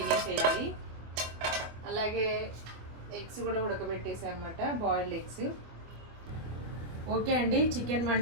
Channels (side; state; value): left; late; 24 ms